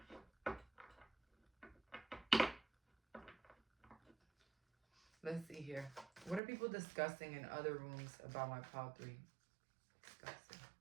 Let's see here. What are people discussing in other rooms about my pile 3? Discussing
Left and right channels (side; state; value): left; drops out; at 6.4 s